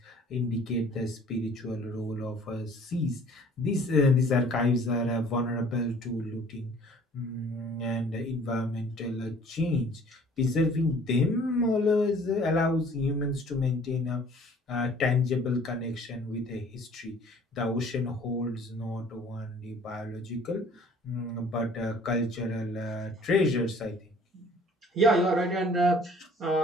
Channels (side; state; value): both; normal; correlation 0.53